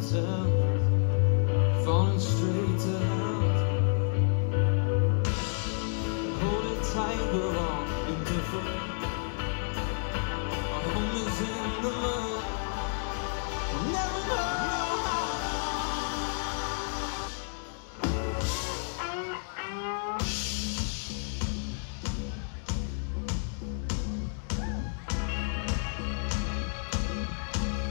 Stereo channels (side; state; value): right; silent; 58 dB below the other